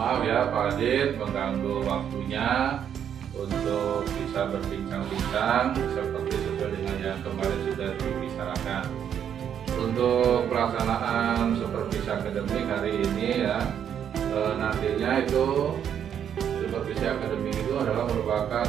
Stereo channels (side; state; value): left; quieter; 8.8 dB